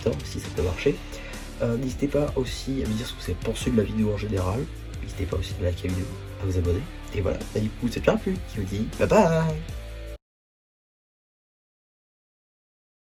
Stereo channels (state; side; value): identical; both; correlation 1.00